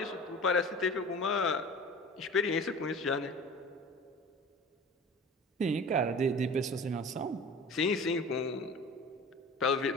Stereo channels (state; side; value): normal; both; correlation 0.39